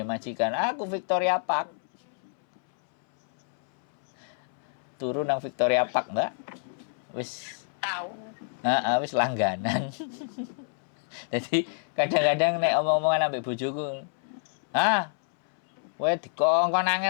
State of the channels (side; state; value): right; silent; 59 dB below the other